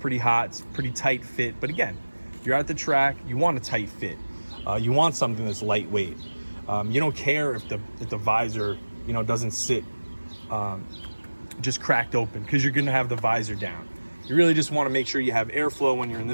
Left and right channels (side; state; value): both; inverted; correlation -1.00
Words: hot, it's pretty tight fit. But again, if you're at the track, you want a tight fit. You want something that's lightweight. You don't care if the visor, doesn't sit just cracked open, because you're gonna have the visor down. You really just want to make sure you have airflow when you're in